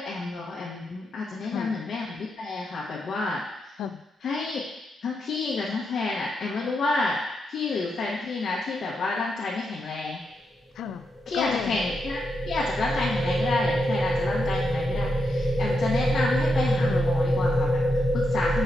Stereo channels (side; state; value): both; normal; correlation 0.84